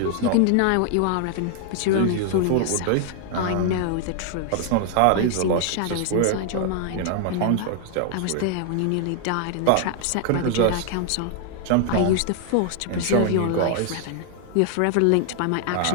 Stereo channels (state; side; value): different; both; correlation 0.00